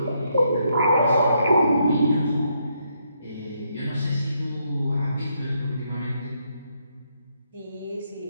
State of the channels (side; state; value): both; inverted; correlation -0.76